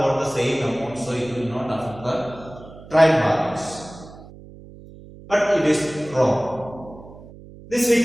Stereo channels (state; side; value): noise; right; hum, 18 dB below the sound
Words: the same amount, so it will not affect the trial balance. But it is wrong. This we